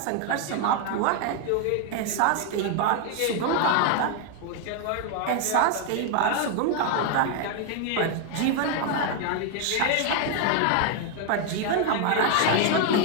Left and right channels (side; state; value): both; different; correlation 0.01